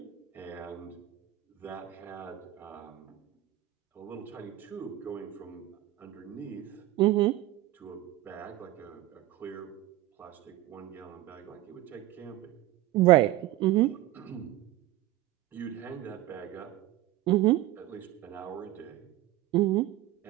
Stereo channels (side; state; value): left; quieter; 14.9 dB